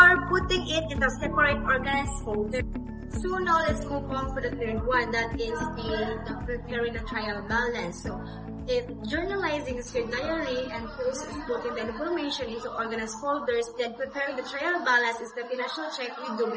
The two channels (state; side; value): identical; both; correlation 1.00